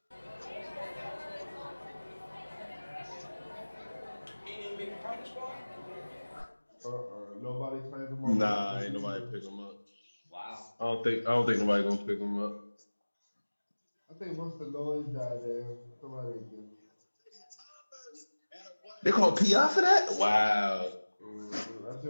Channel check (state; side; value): inverted; both; correlation -1.00